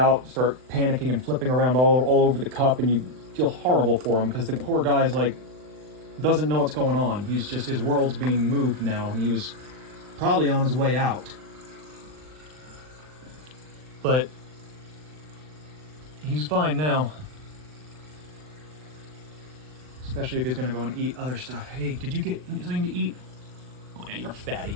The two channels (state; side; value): late; left; 39 ms